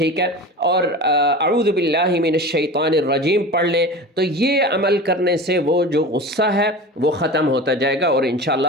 ہے، اور اعوذ باللہ من الشیطان الرجیم پڑھ لیں. تو یہ عمل کرنے سے وہ جو غصہ ہے وہ ختم ہوتا جائے گا اور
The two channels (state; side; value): normal; both; correlation 0.32